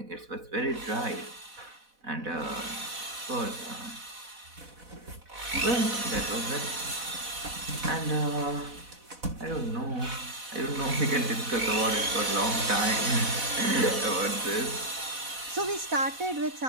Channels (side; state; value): left; late; 4.1 ms